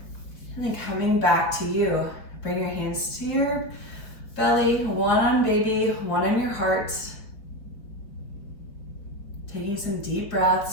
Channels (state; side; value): late; right; 4.7 ms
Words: and then coming back to you. Bring your hands to your belly, one on baby, one on your heart. Taking some deep